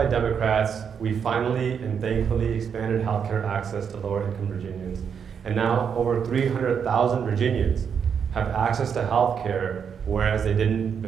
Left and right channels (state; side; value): quieter; left; 7.1 dB